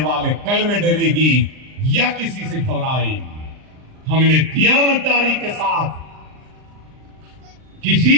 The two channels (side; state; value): left; late; 39 ms